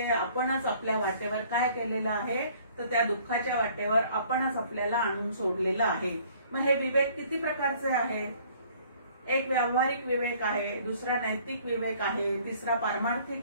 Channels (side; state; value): both; inverted; correlation -0.57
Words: आपणच आपल्या वाटेवर काय केलेलं आहे तर त्या दुःखाच्या वाटेवर आपणच आपल्याला आणून सोडलेलं आहे. मग हे विवेक किती प्रकारचे आहे? एक व्यावहारिक विवेक आहे, दुसरा नैतिक विवेक आहे, तिसरा